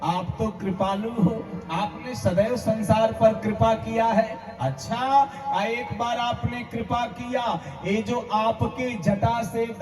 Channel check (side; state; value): both; identical; correlation 1.00